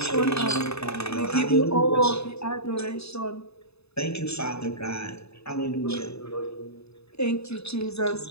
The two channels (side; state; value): right; late; 0.79 ms